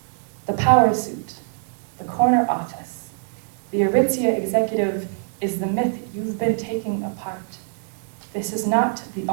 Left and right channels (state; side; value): silent; left; digital silence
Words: The power suit, the corner office, the Aritzia executive is the myth you've been taking apart. This is not the